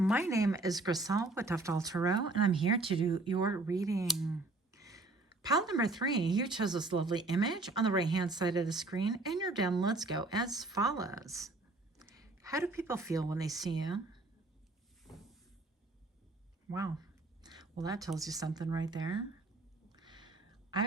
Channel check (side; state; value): left; quieter; 3.1 dB